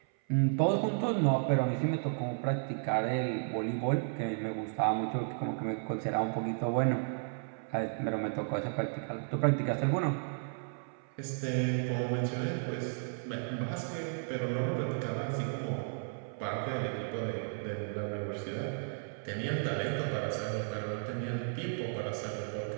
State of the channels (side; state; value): left; silent; 55 dB below the other